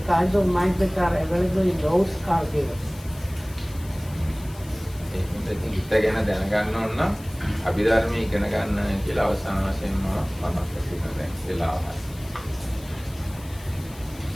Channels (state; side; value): noise; left; hiss, 20 dB below the sound